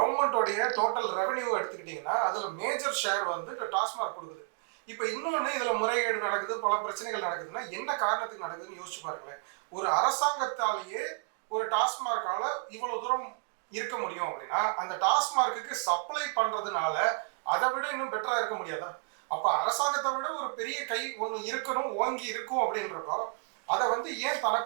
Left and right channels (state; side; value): quieter; left; 38.6 dB